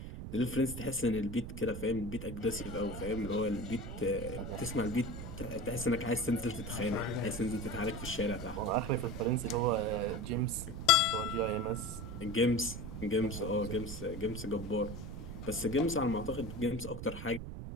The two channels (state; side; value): noise; right; rumble, 8 dB below the sound